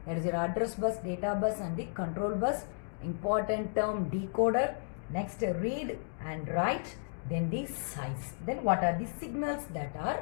that is your address bus, data bus and the control bus. Important term, decoder. Next read and write, then the size. Then what are the signals that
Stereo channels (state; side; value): silent; right; digital silence